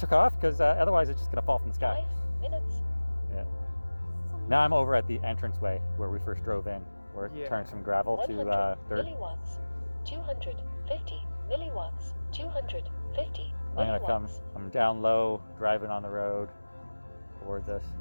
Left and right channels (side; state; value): both; inverted; correlation -1.00